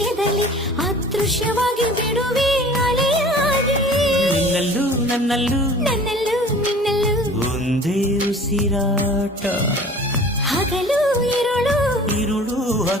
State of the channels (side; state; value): both; normal; correlation 0.45